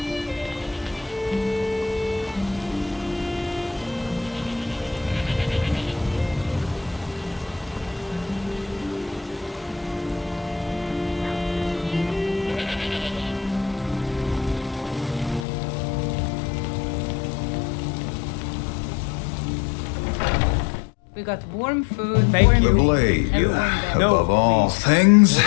We got warm food, Thank warm you. The meat, blade, everyone there. No, above all please. things,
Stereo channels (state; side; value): drops out; right; at 15.5 s